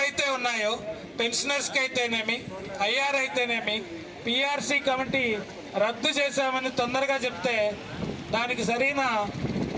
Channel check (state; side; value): identical; both; correlation 1.00